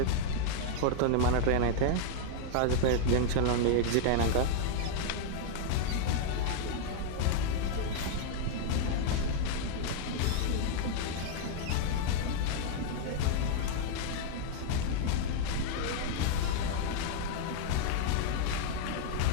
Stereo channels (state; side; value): different; both; correlation -0.01